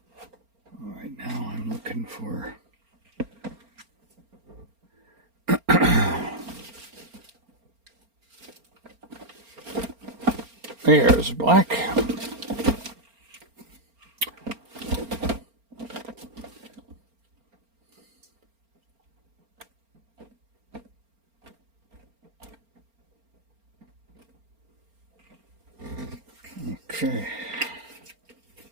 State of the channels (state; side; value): late; left; 4.4 ms